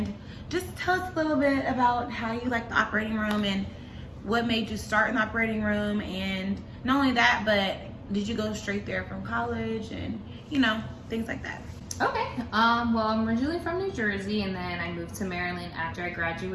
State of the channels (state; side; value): identical; both; correlation 1.00